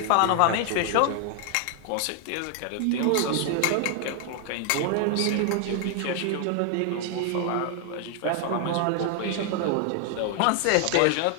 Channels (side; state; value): both; different; correlation 0.00